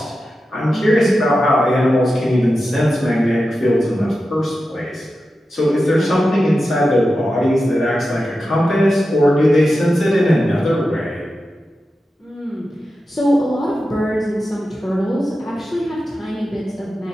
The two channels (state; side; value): normal; both; correlation 0.91